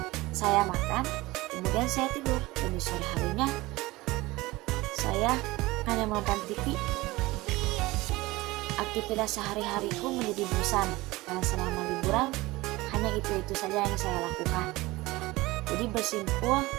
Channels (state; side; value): quieter; left; 20.2 dB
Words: saya makan, kemudian saya tidur. Dan di sore harinya, saya hanya menonton TV. Aktivitas sehari-hariku menjadi bosan, karena selama liburan, hanya itu-itu saja yang saya lakukan. Jadi